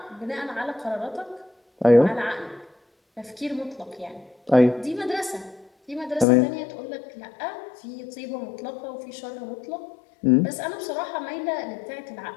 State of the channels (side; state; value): right; drops out; at 6.2 s